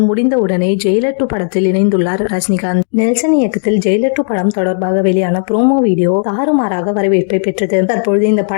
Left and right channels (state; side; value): silent; right; digital silence